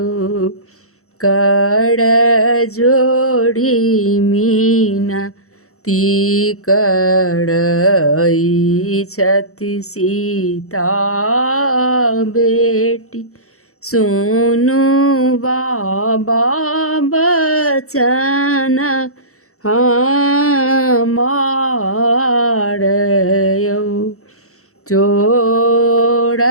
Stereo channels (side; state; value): right; late; 0.64 ms